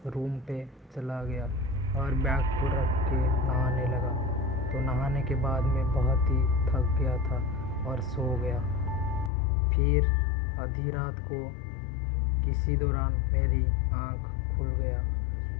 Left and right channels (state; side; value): drops out; right; at 9.3 s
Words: रूम पे चला गया और बैग को रख के नहाने लगा। तो नहाने के बाद मैं बहुत ही थक गया था और सो गया। फिर आधी रात को किसी दौरान मेरी आँख खुल गया